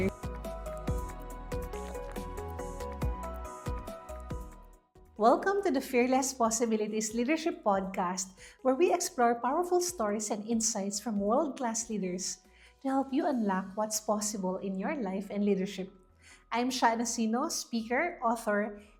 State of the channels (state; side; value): identical; both; correlation 1.00